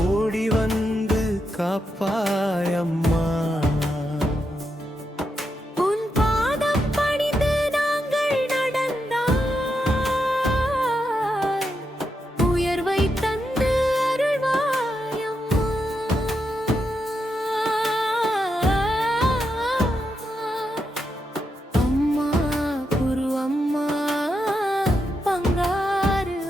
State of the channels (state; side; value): normal; both; correlation 0.84